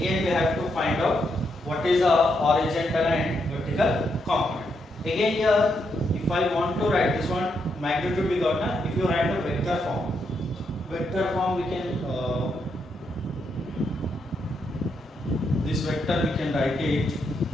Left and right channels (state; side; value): normal; both; correlation 0.80